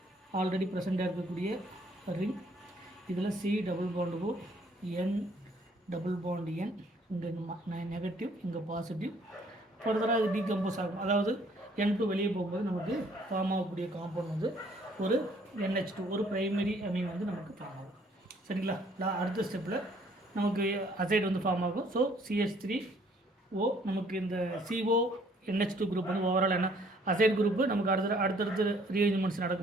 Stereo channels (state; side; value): normal; both; correlation 0.62